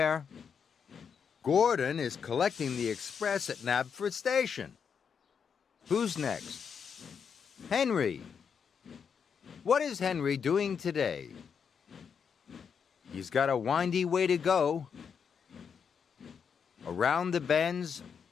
Gordon is collecting the express at Knapford Station. Who's next? Henry. What is Henry doing today? He's got a windy way to go. Around the bends,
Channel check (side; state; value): right; quieter; 6.7 dB